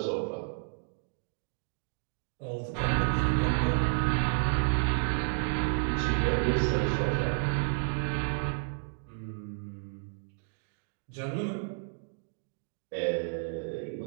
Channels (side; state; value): left; silent; digital silence